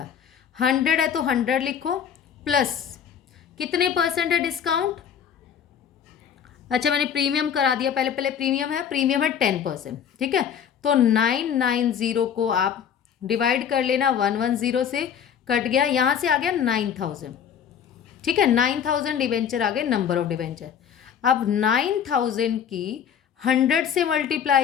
100 है तो 100 लिखो, प्लस कितने परसेंट है डिस्काउंट। अच्छा मैंने प्रीमियम करा दिया, पहले पहले प्रीमियम है 10%। ठीक है, तो 990 को आप डिवाइड कर लेना 110 से, कट गया, यहाँ से आ गया 9000। ठीक है, 9000 डिबेंचर आ गए, नंबर ऑफ डिबेंचर। अब 9000 की 100 से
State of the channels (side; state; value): right; quieter; 8.3 dB